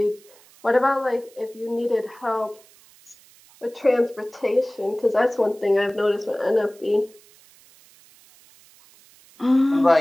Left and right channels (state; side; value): noise; right; hiss, 27 dB below the sound